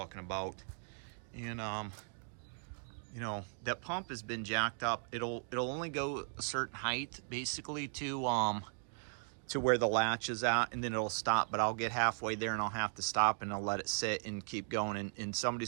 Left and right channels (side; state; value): left; silent; 53 dB below the other